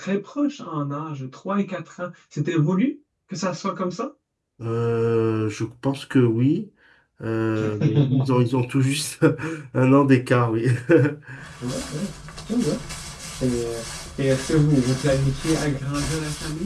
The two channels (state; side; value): identical; both; correlation 1.00